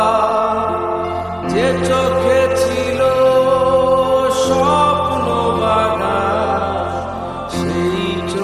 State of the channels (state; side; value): identical; both; correlation 1.00